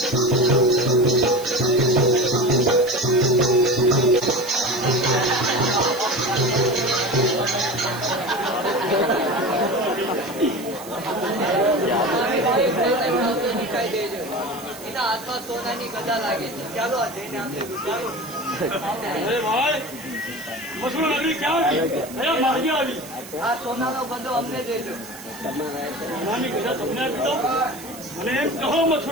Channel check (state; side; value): noise; right; hiss, 16 dB below the sound